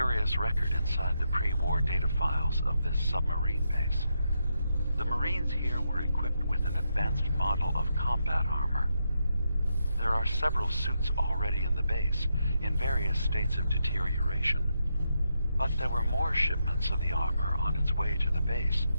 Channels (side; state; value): both; inverted; correlation -0.82